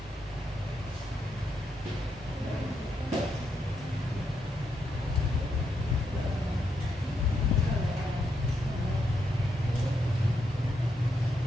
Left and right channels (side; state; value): both; normal; correlation 0.80